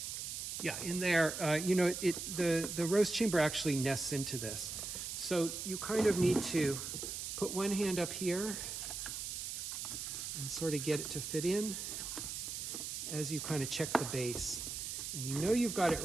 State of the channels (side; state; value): right; noise; hiss, 5 dB below the sound